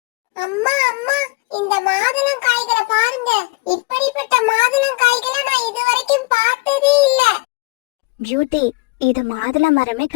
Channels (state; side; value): quieter; right; 26.0 dB